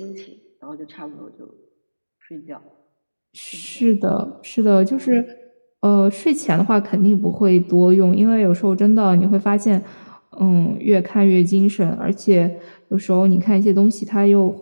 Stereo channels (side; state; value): both; inverted; correlation -1.00